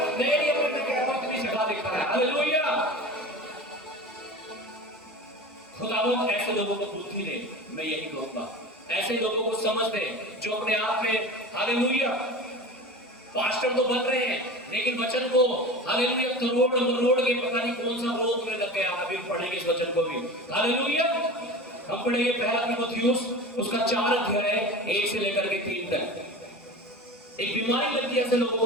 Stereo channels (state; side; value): normal; both; correlation 0.33